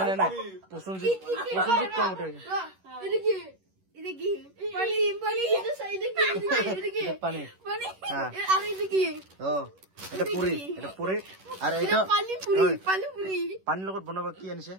নাই প্ৰসঞ্জিত কম উঠে পানীৰ লগত বনাবা কি আনিছে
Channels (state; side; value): late; left; 11 ms